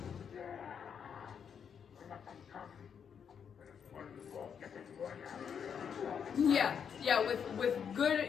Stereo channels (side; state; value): right; quieter; 7.4 dB